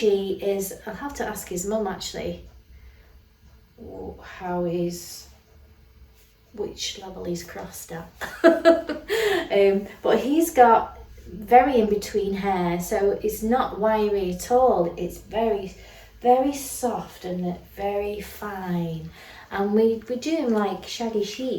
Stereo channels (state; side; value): identical; both; correlation 1.00